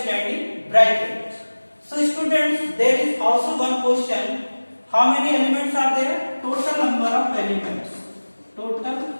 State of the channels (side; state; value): both; inverted; correlation -1.00